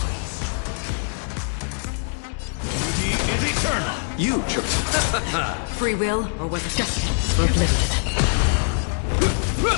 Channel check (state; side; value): silent; right; 63 dB below the other